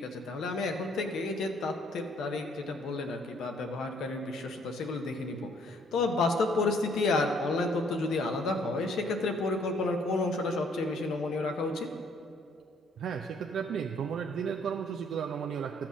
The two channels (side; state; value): both; normal; correlation 0.63